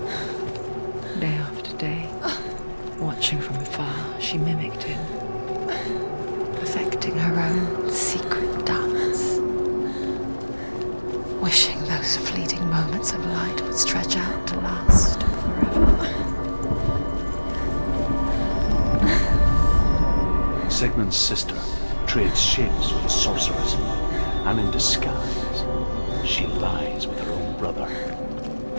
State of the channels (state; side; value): inverted; both; correlation -1.00